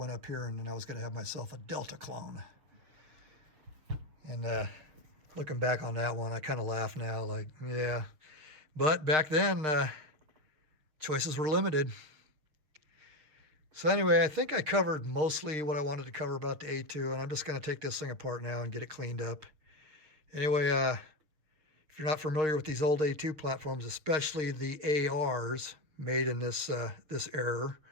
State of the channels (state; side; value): late; left; 6.5 ms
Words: up here, and then I was going to have myself a Delta clone. And looking back on that one, I kind of laugh now, like, yeah. But back then, choices were limited. So anyway, I think I covered mostly what I wanted to cover about the A2, and I'm just going to take this thing apart now and get it cleaned up. Anyway, if you're not familiar with these old A2 platforms, especially the ARs made in this era,